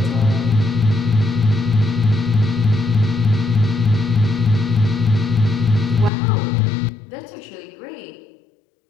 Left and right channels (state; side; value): drops out; right; at 6.1 s